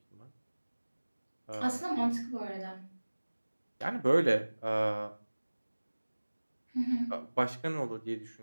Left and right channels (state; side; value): inverted; both; correlation -1.00